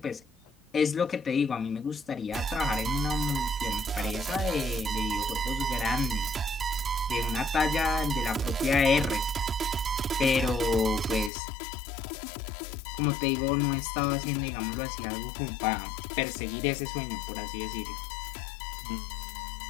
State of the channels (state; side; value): drops out; right; at 11.3 s